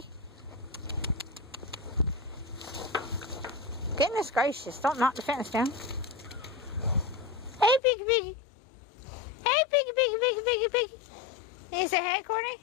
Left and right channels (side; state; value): right; drops out; at 7.8 s